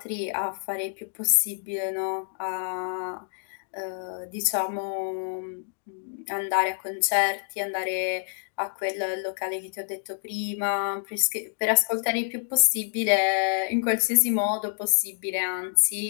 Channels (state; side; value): silent; right; digital silence